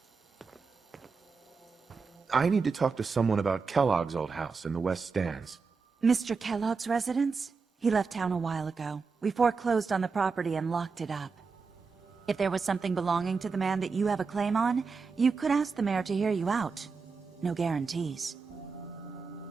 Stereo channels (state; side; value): quieter; left; 4.9 dB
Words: I need to talk to someone about Kellogg's old house in the West Stands. Mr. Kellogg's residence? He left town a while ago. We foreclosed on the property and locked it up. If there was something belonging to the man that you have a claim on, you could ask the mayor to hear you out. No guarantees.